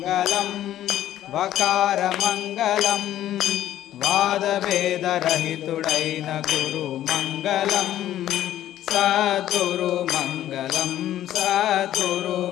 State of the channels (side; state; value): right; quieter; 12.5 dB